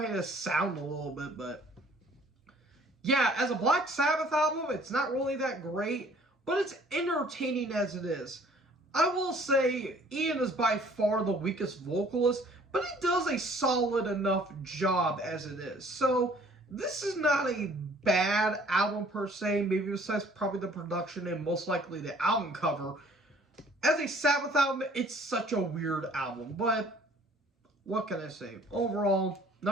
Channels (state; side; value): normal; both; correlation 0.56